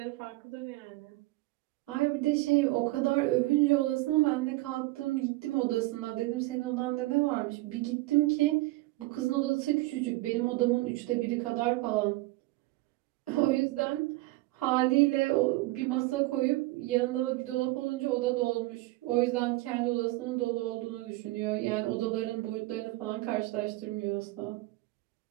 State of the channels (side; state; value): left; quieter; 20.3 dB